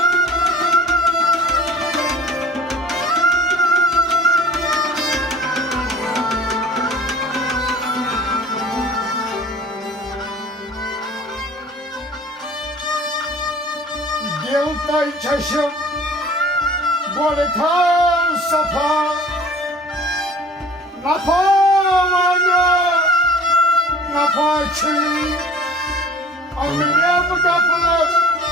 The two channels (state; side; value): normal; both; correlation 0.45